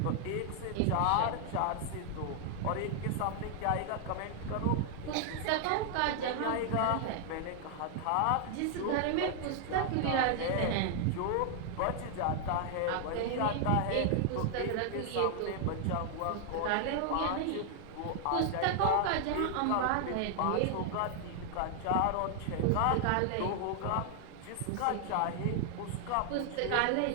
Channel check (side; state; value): both; different; correlation 0.00